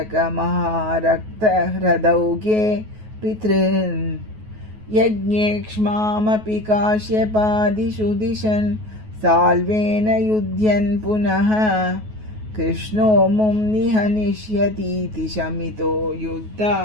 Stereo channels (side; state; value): left; late; 9.3 ms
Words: पितॄन् यज्ञेक्ष्मामपि काश्यपादिषु दिशन् साल्वेन युध्यन् पुनः कृष्णो मुं निहनिष्यतीति शमितो